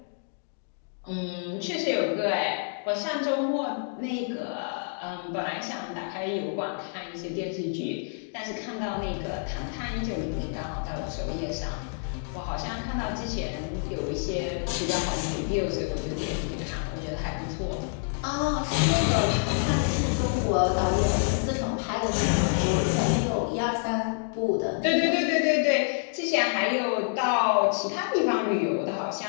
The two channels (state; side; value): silent; right; digital silence